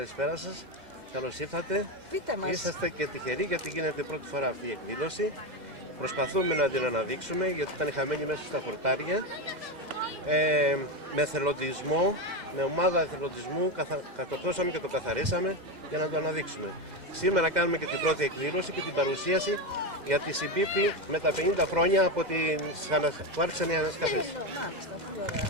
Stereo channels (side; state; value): left; late; 2.1 ms